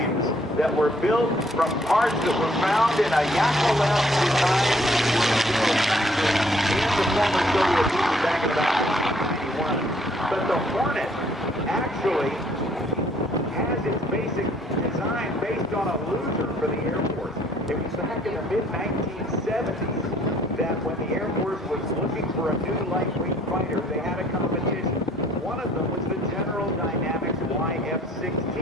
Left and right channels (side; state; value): both; normal; correlation 0.63